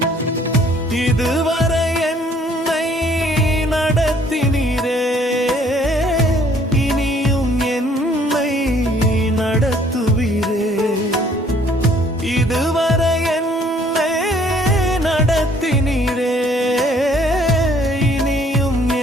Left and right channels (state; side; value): normal; both; correlation 0.60